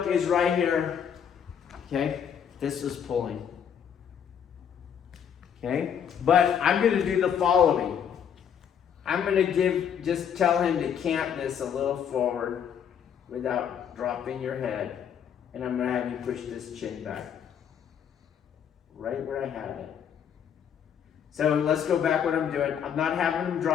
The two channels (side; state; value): right; quieter; 8.3 dB